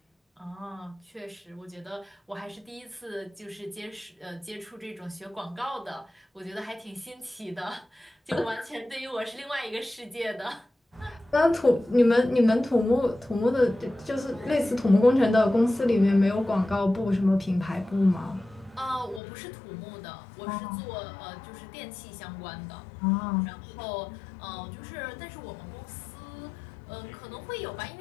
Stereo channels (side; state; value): right; drops out; at 19.2 s